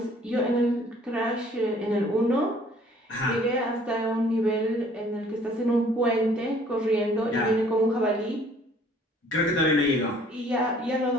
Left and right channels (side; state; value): both; normal; correlation 0.57